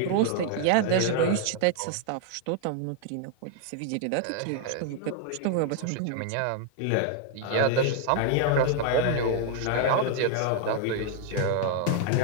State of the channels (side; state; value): both; different; correlation 0.00